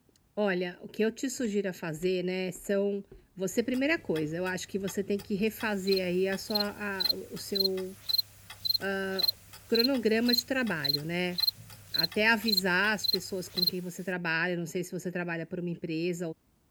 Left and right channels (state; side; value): identical; both; correlation 1.00